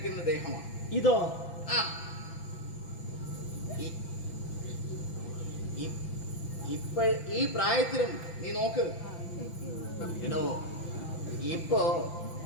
ദേഹമാണ് ഇതോ. ഈ പ്രായത്തിലും നീ നോക്ക് എടോ, ഇപ്പോ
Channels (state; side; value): late; right; 6.0 ms